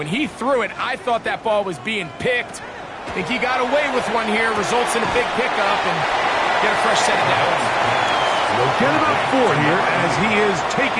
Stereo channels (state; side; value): identical; both; correlation 1.00